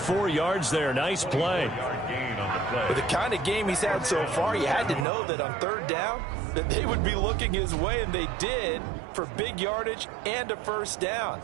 yards there. Nice play. With the kind of game he's had so far, you had to know that on 3rd down that they would be looking his way, and they did, for big yardage and a 1st down.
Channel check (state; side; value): drops out; left; at 5.1 s